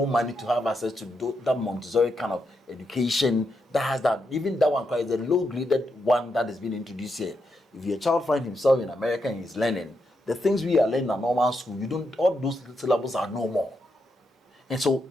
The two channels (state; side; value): normal; both; correlation 0.82